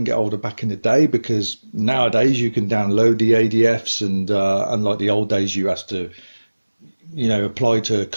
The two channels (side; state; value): both; inverted; correlation -1.00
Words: get hold of back in the day, because nowadays you can download the ADFs, and unlike the old days you have to apply to